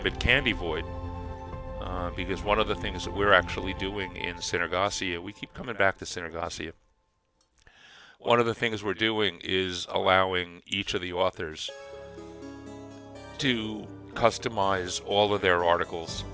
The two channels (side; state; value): both; identical; correlation 1.00